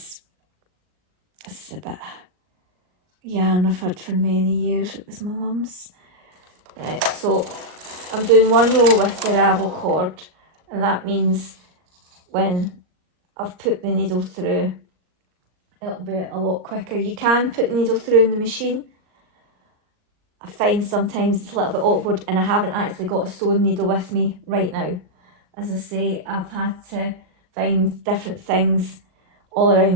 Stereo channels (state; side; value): late; left; 39 ms